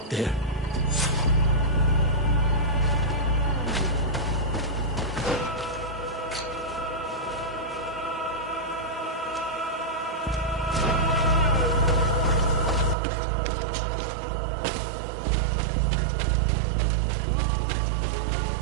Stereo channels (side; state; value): left; drops out; at 13.0 s